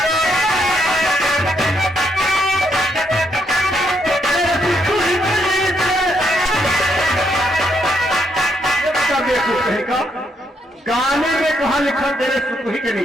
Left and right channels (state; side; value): normal; both; correlation 0.75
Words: का गाने में कहा लिखा तेरे सुखी के